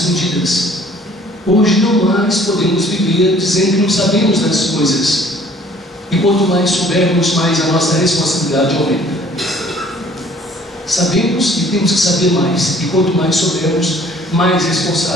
Hoje não mais podemos viver dizendo que não sabemos das coisas. E quanto mais soubermos, mais a nossa responsabilidade aumenta. Sabemos e temos que saber mais. E quanto mais soubermos, mais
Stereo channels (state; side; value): normal; both; correlation 0.55